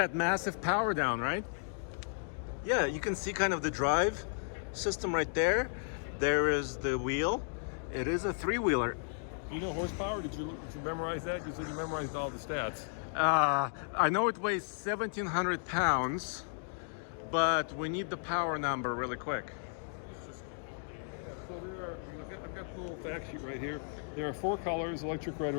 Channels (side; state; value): right; silent; digital silence